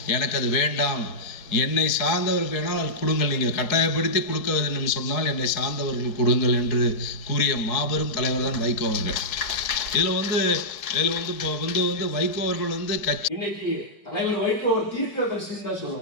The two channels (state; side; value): late; right; 4.5 ms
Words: எனக்கு அது வேண்டாம், என்னை சார்ந்தவர்கள் வேணால் கொடுங்கள், நீங்கள் கட்டாயப்படுத்தி கொடுக்க வேண்டும் சொன்னால் என்னை சார்ந்தவர்கள் கொடுங்கள் என்று கூறிய மாபெரும் தலைவர் தான் வைகோ அவர்கள். இதில் வந்து இப்போ வந்து வைகோ அவர்கள் வந்து கட்சி இன்னைக்கு தலைவர் வைகோ ஒரு தீர்க்கதரிசின்னு தான்